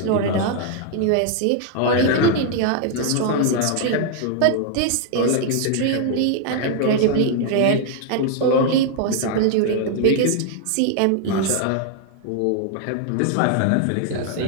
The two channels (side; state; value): both; different; correlation 0.00